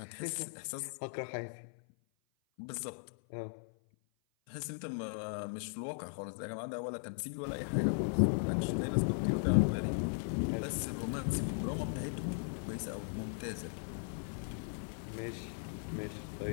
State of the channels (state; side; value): silent; right; 53 dB below the other